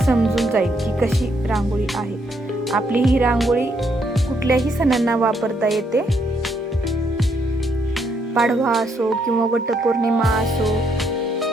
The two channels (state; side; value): normal; both; correlation 0.74